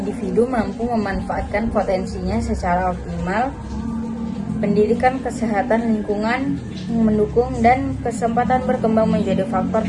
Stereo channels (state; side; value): identical; both; correlation 1.00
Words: mampu memanfaatkan potensinya secara optimal. Pendidikan, kesehatan, lingkungan yang mendukung, dan kesempatan berkembang menjadi faktor